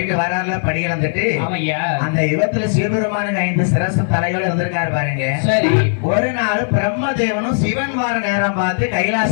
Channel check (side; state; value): right; silent; 68 dB below the other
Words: வராருல படி இழந்துட்டு ஆமையா அந்த யுகத்துல சிவபெருமானுக்கு 5 சிரசு தலையோட இருந்திருக்காரு பாருங்க. சரி ஒரு நாள் பிரம்மதேவனும் சிவன் வார நேரம் பார்த்து